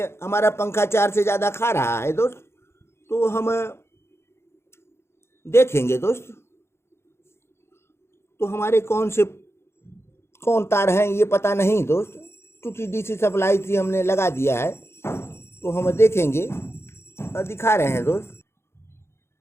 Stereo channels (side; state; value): right; late; 0.12 ms